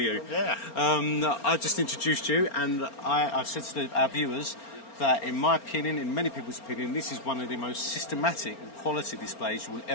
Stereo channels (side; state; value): right; late; 4.4 ms